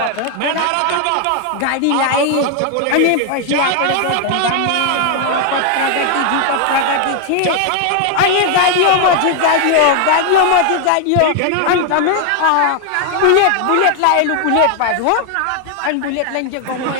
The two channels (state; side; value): different; both; correlation 0.00